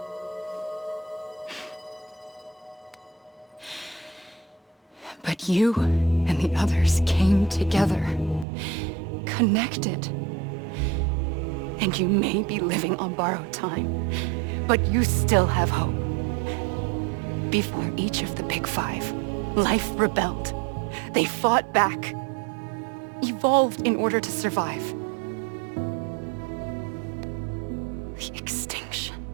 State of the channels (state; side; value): drops out; left; at 8.5 s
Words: But you and the others came together, connected. And you may be living on borrowed time, but you still have hope. Before each of the Big Five, life rebelled. They fought back, evolved in order to survive. The extinction